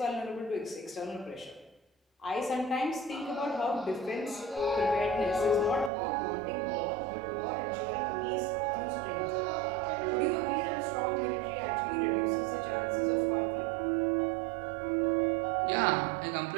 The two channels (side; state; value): left; drops out; at 5.9 s